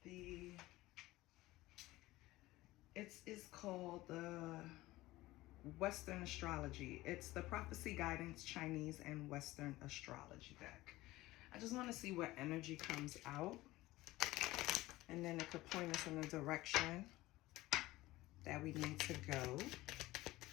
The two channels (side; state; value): right; quieter; 18.2 dB